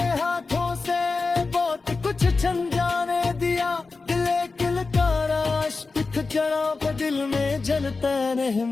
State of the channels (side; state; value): right; quieter; 4.0 dB